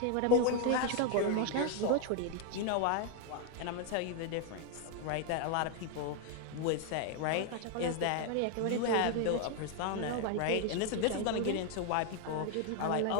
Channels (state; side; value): different; both; correlation 0.01